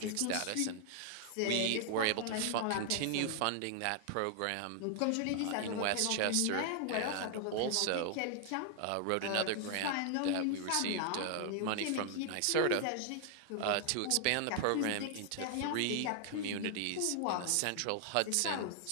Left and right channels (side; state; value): both; different; correlation 0.00